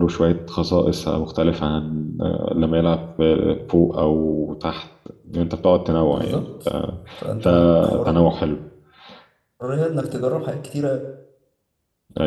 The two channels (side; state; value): both; identical; correlation 1.00